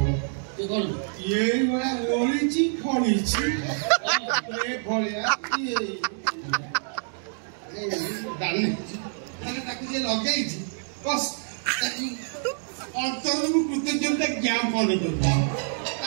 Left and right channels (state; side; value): silent; left; digital silence